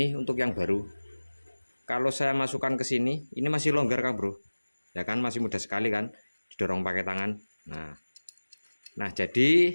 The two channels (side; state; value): both; inverted; correlation -1.00